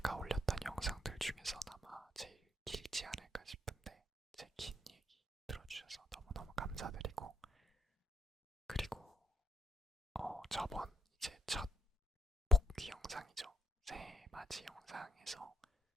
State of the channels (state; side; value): normal; both; correlation 0.73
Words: 올렸던 영상들 중에서 아마 제일 길지 않을까 싶은데, 제 긴 얘기 들어주셔서 너무너무 감사드리고, 그리고 저번 이제 첫 복귀 영상이죠. 새해 맞이 영상에서